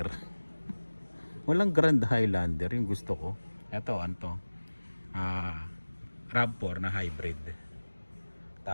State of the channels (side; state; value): both; inverted; correlation -1.00